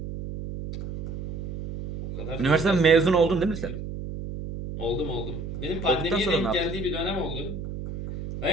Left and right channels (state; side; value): noise; right; hum, 7 dB below the sound